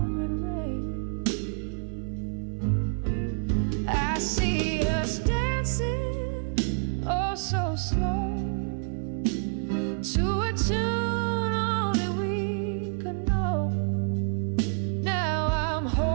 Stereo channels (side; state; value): left; silent; 59 dB below the other